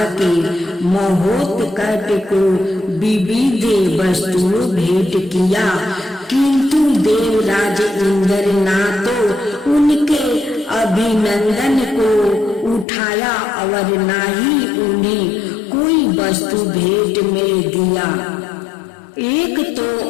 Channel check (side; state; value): right; drops out; at 12.9 s